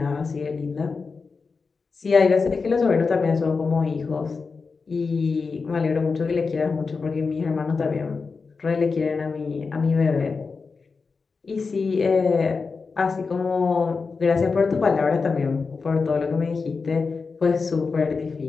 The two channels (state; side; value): quieter; right; 4.7 dB